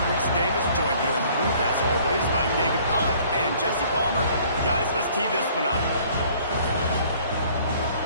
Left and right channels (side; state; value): both; inverted; correlation -0.56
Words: Reese Davis, joined here in the booth, as always, by David Pollack and Jesse Palmer. Guys, let's tee this one up.